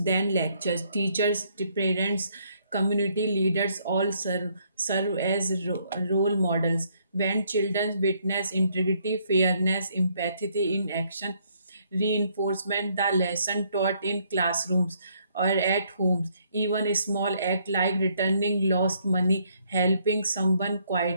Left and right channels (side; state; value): both; inverted; correlation -0.69